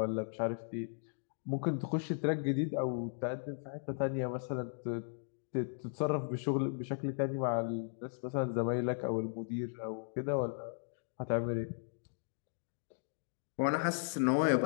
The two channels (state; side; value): silent; right; digital silence